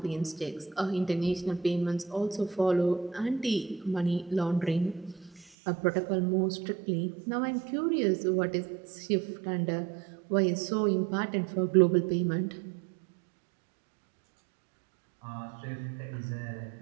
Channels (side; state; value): left; drops out; at 5.5 s